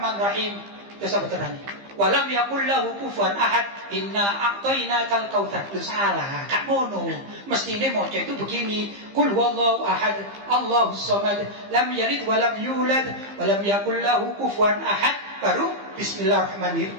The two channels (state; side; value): late; left; 15 ms